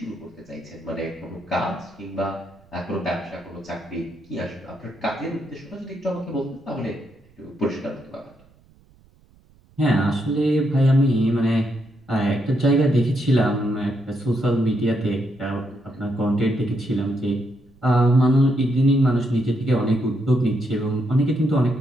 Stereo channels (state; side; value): noise; right; rumble, 30 dB below the sound